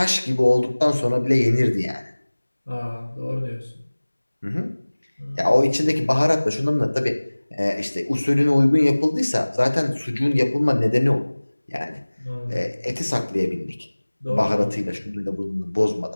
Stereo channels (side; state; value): both; inverted; correlation -1.00